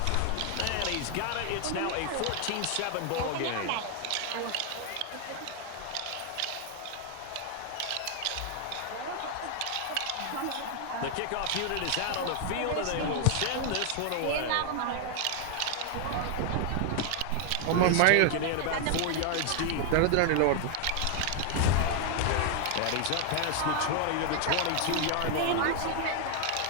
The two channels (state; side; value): different; both; correlation 0.00